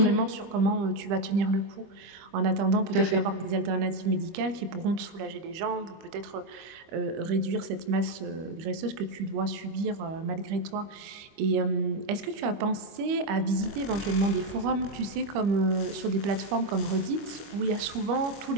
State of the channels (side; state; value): left; late; 25 ms